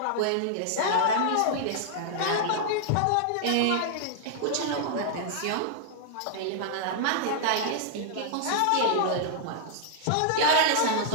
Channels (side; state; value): both; different; correlation -0.01